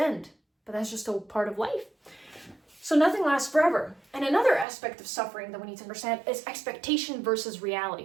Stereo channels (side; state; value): left; drops out; at 4.7 s